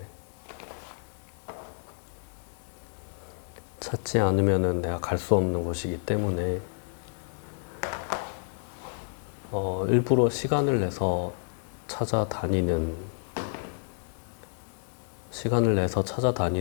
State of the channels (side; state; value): right; silent; digital silence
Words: 찾지 않으면은 내가 갈 수 없는 곳이기 때문에 일부러 시간을 내서 찾아다니는